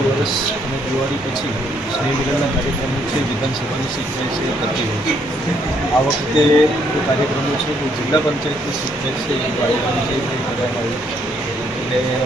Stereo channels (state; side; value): normal; both; correlation 0.70